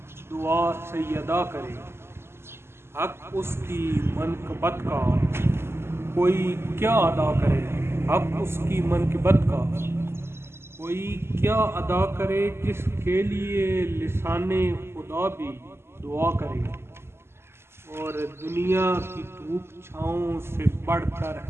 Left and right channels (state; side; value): late; left; 0.12 ms